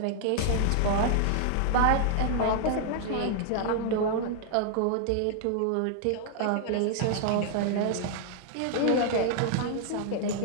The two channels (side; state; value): both; different; correlation 0.00